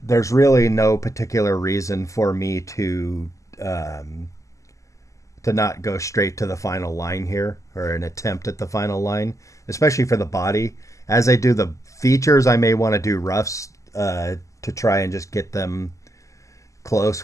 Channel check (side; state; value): right; late; 0.16 ms